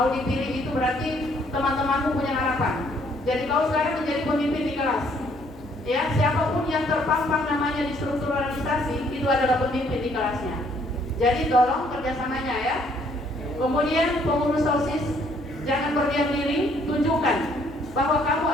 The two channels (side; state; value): both; normal; correlation 0.65